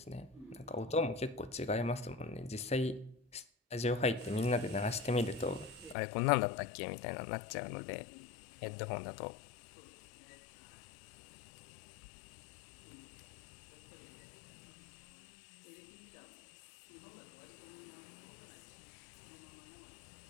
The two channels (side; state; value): right; drops out; at 6.0 s